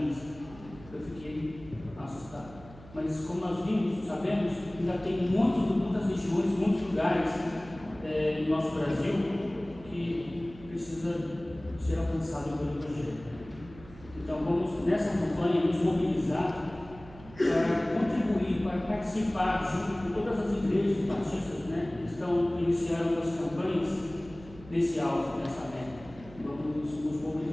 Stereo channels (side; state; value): right; noise; hum, 19 dB below the sound